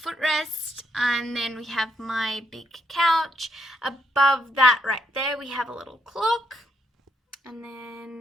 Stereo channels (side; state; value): both; normal; correlation 0.76